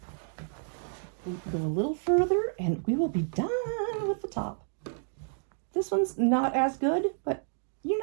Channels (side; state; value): left; silent; digital silence